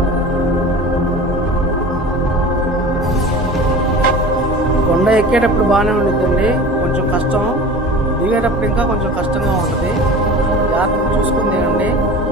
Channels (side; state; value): both; normal; correlation 0.37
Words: కొండ ఎక్కేటప్పుడు బాగానే ఉంటుందండి, కొంచెం కష్టం. దిగేటప్పుడు ఇంకా కొంచెం కష్టంగా ఉంటుంది. జాగ్రత్తగా చూసుకుని దిగండి.